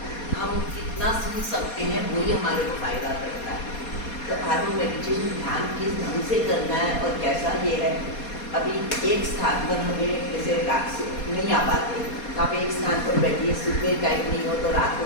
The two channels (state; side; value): late; right; 4.2 ms